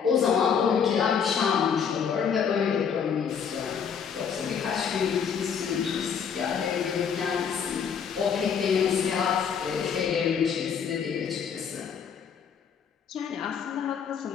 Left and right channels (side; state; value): right; quieter; 7.1 dB